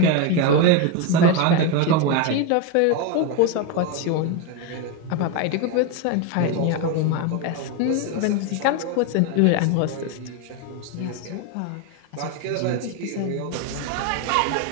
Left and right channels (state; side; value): different; both; correlation 0.02